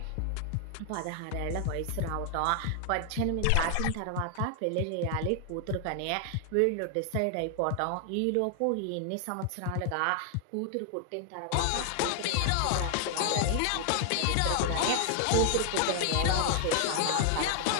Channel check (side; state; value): both; different; correlation 0.00